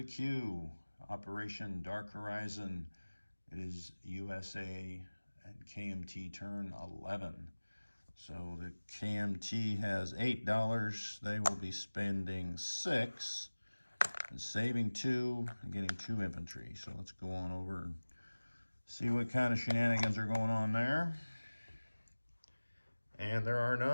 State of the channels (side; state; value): both; inverted; correlation -1.00